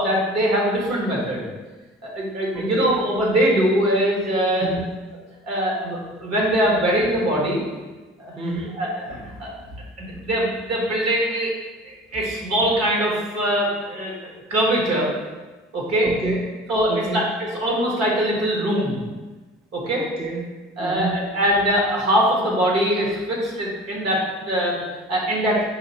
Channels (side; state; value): both; normal; correlation 0.41